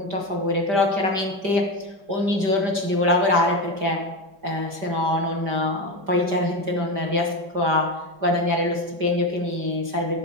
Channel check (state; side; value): late; left; 5.1 ms